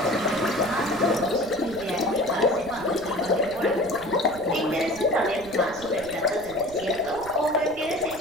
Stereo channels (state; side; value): noise; right; rumble, 18 dB below the sound